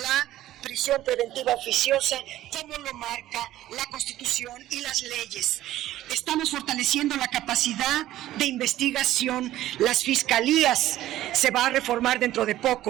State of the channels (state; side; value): quieter; left; 14.2 dB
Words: la prisión preventiva oficiosa como lo marca la Constitución y las leyes. Estamos fortaleciendo la capacidad de investigación. Las fiscalías se va a reformar dentro de